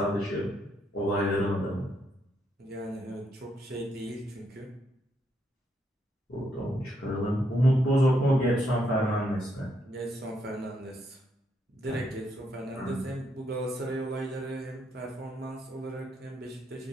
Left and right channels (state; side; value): normal; both; correlation 0.76